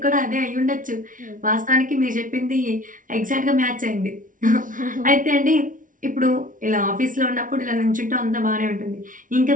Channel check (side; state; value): left; late; 0.38 ms